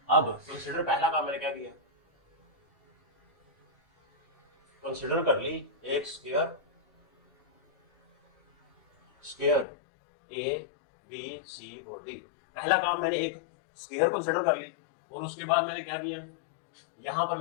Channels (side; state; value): right; drops out; at 9.7 s